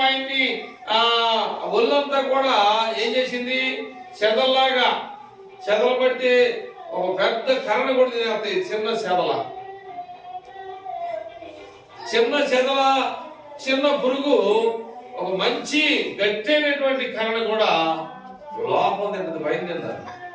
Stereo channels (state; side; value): identical; both; correlation 1.00